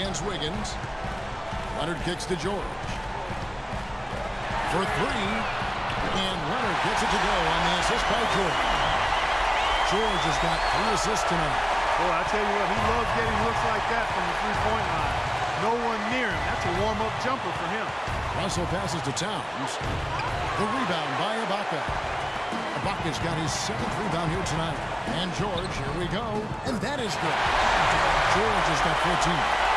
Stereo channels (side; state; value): both; identical; correlation 1.00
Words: Wiggins. Leonard kicks to George. For 3. And Leonard gets it to go on the assist by George. George has got 3 assists tonight. Boy, I tell you what, he loves getting looks like that from the three-point line. No one near him. That's a warm-up jumper for him. Russell passes to Towns. The rebound by Ibaka. Ibaka's got his 7th rebound here tonight. And George, here we go. And that is good. George has got 14.